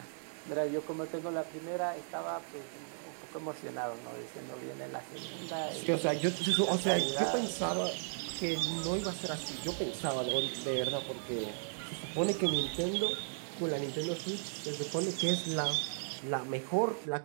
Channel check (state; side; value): silent; left; digital silence